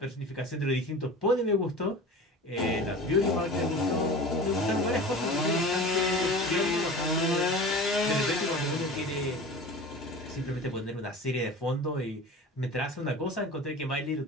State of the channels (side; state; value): both; normal; correlation 0.36